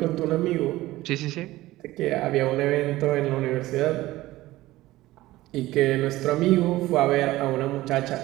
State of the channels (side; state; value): left; quieter; 17.2 dB